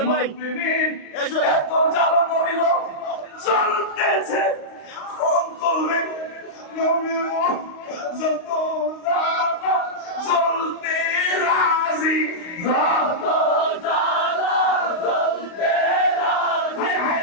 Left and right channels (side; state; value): right; late; 35 ms